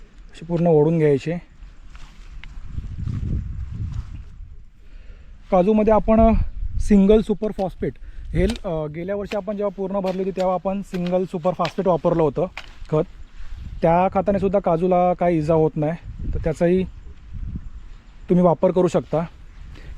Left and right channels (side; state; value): both; identical; correlation 1.00